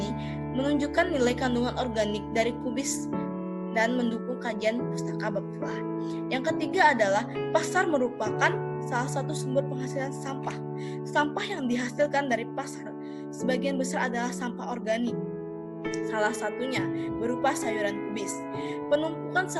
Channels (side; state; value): both; identical; correlation 1.00